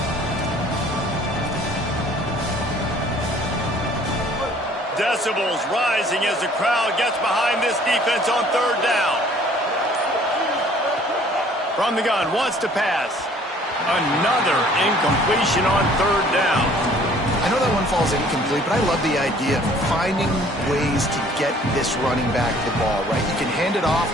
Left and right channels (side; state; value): both; normal; correlation 0.55